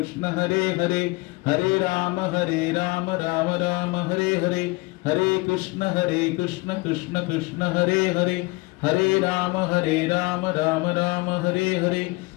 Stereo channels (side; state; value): right; quieter; 24.5 dB